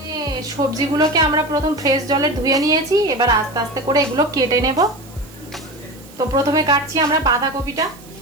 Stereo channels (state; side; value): noise; right; hiss, 23 dB below the sound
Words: সবজিগুলোকে আমরা প্রথম ফ্রেশ জলে ধুয়ে নিয়েছি, এবার আস্তে আস্তে করে এগুলো কেটে নেব। তো প্রথমে কাটছি আমরা বাঁধাকপিটা।